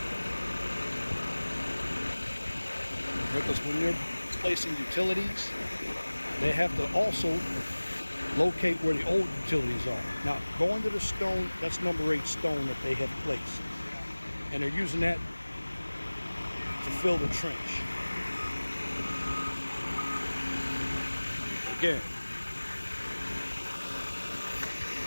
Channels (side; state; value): both; inverted; correlation -1.00